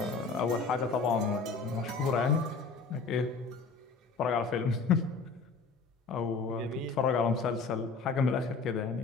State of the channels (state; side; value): quieter; right; 4.5 dB